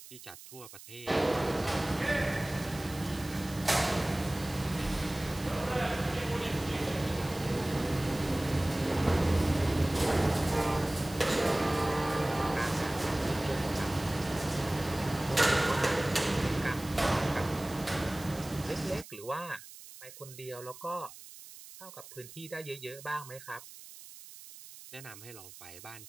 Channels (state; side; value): noise; right; hiss, 17 dB below the sound